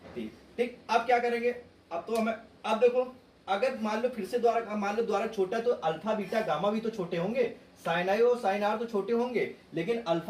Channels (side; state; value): both; identical; correlation 1.00